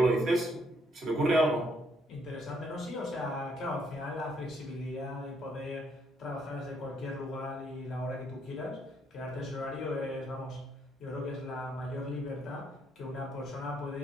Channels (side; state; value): both; normal; correlation 0.71